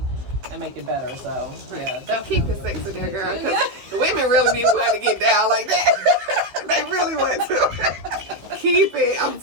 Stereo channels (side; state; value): left; late; 15 ms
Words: make it better. So, yeah. Don't keep it sexy there, girl, because women really need one to get down like that. They really want to. Keep it. I'm